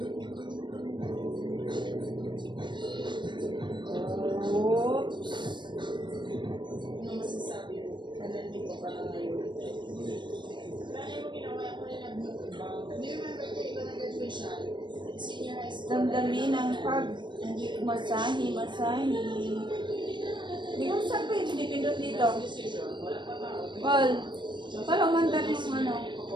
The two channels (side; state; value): left; late; 0.22 ms